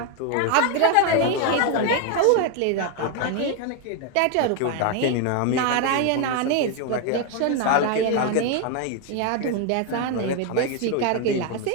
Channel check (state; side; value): different; both; correlation 0.01